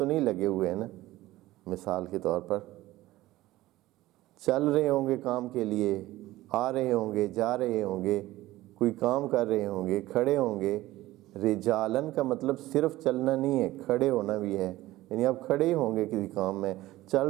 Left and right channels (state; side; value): quieter; left; 16.9 dB